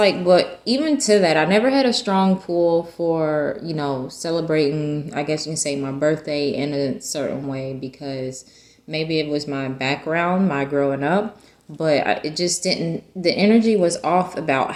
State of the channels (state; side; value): identical; both; correlation 1.00